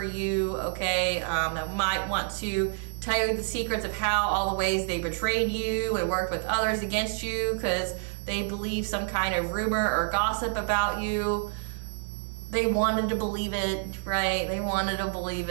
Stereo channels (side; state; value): left; silent; 59 dB below the other